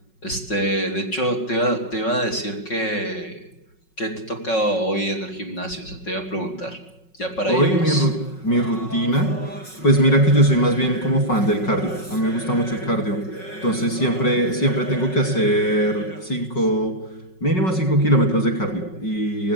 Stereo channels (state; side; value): late; right; 5.4 ms